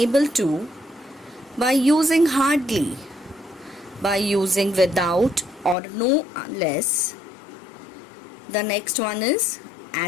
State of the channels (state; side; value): drops out; right; at 5.8 s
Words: to, by using hardly, by using without or no unless. The next one is